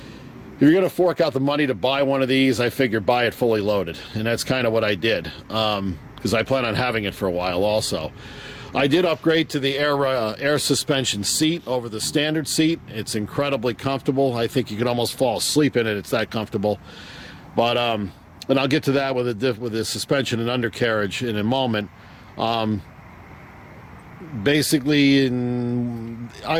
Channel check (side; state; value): both; identical; correlation 1.00